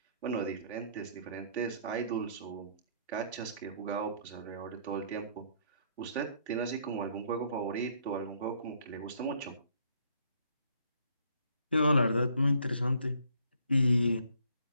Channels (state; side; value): inverted; both; correlation -0.64